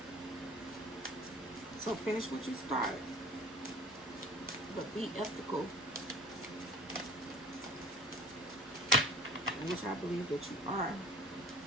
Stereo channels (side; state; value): both; normal; correlation 0.44